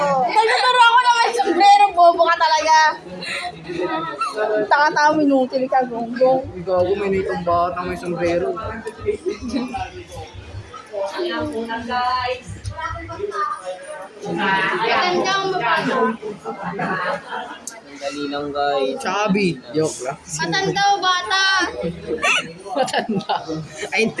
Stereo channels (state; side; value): identical; both; correlation 1.00